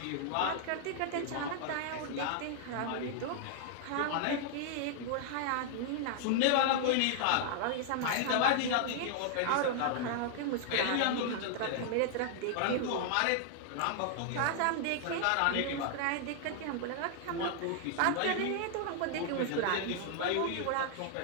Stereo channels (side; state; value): both; different; correlation -0.01